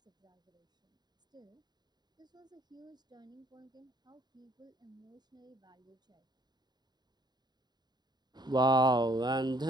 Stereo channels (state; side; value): late; left; 0.20 ms